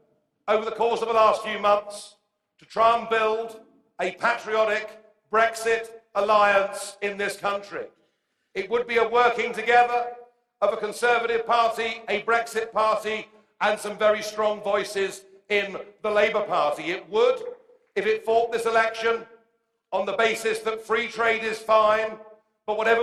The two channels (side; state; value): both; identical; correlation 1.00